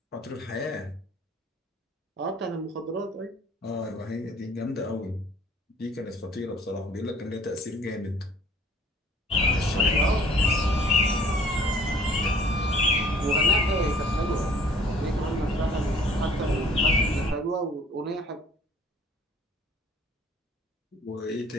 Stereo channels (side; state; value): both; normal; correlation 0.54